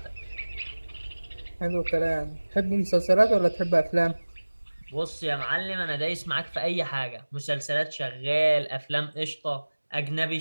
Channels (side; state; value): both; inverted; correlation -1.00